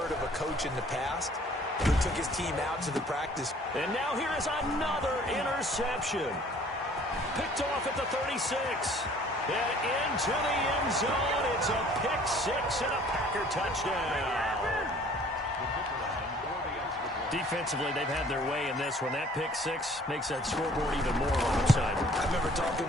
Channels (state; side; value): normal; both; correlation 0.54